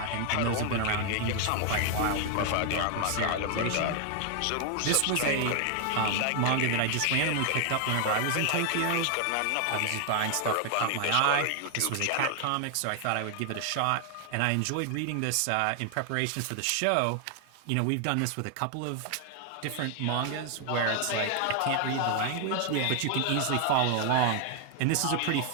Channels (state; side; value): different; both; correlation 0.00